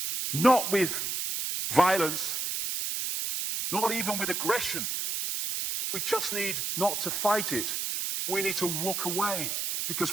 Not with violence, not even with aggression. We just need not to fight it. We need to walk away,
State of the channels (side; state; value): right; noise; hiss, 2 dB below the sound